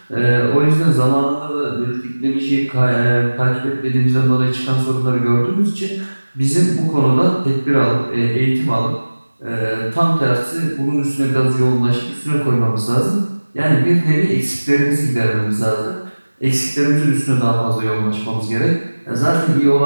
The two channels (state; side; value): inverted; both; correlation -1.00